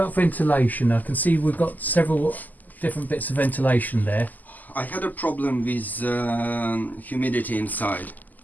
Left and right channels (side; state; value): right; late; 0.082 ms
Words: ventilation? I can see we've got several different bits of ventilation there. I had a problem with humidity inside.